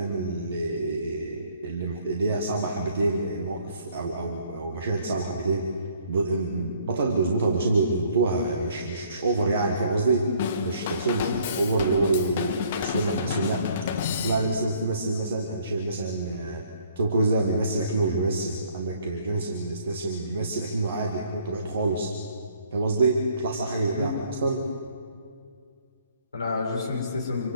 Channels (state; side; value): inverted; both; correlation -0.62